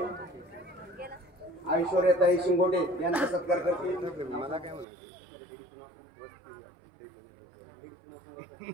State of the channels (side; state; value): left; drops out; at 4.9 s